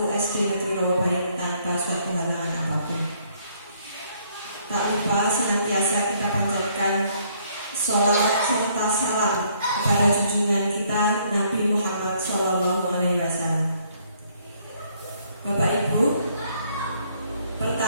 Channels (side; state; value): both; inverted; correlation -0.66